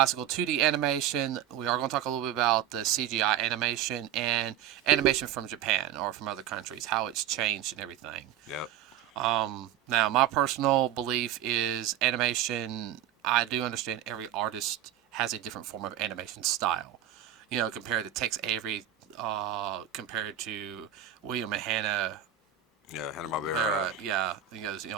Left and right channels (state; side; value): quieter; left; 11.0 dB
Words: 2D animation. We are going to talk a little bit about the CGI animation and animation from Japan or from other countries, how it's changed and everything. Yep. Now, my personal belief is animation, I do understand every artist has a different form of animation style. Compared to Tex Avery, compared to William and Hanna. Yeah, Hanna-Barbera.